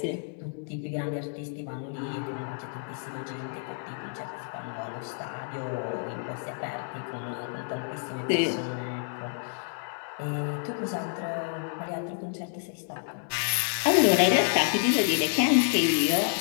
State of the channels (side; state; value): right; silent; 58 dB below the other